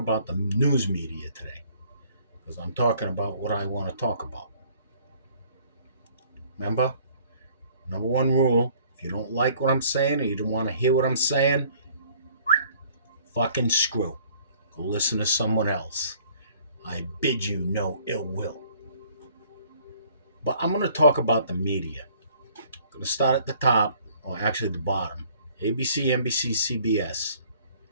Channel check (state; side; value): inverted; both; correlation -0.57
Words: the news media today because I'm talking about what I want to talk about. Remember, number one rule: if you don't like what I'm saying or you don't want to hear what I'm saying, fucking screw. Go listen to someone else. I bid you no ill will. But I'm going to talk about the media. I'm going to start at the top, or actually the bottom. ABC, NBC, CBS.